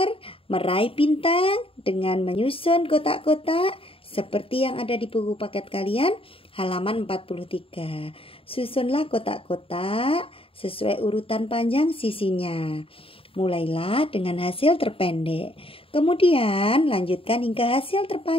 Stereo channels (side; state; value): right; late; 0.27 ms